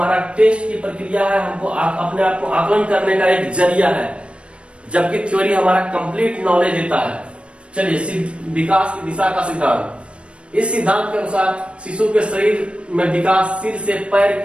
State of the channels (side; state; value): left; late; 0.059 ms